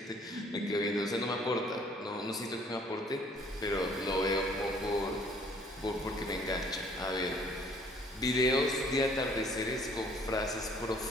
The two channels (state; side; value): normal; both; correlation 0.58